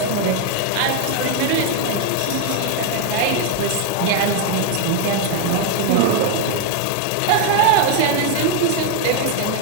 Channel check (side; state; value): both; different; correlation 0.01